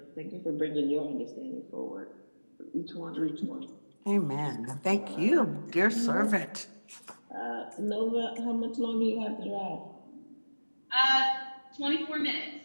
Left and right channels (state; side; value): inverted; both; correlation -1.00